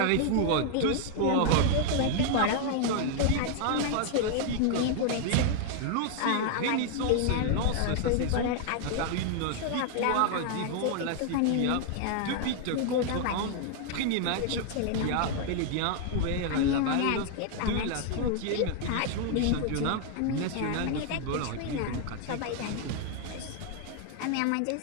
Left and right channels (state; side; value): different; both; correlation 0.00